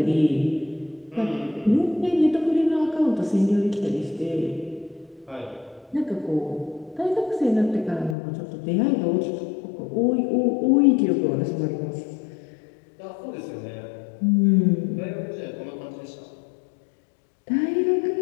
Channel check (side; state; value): right; drops out; at 8.2 s